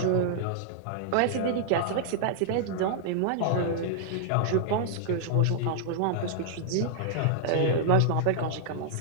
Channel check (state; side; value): different; both; correlation -0.01